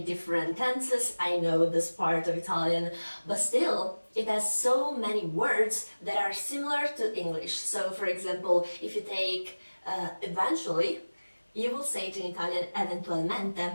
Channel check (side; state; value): both; inverted; correlation -1.00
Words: different tenses. I know this part of Italian, but still, it has so many words that are similar to English. So, for example, if you take eventually, you will say it in Italian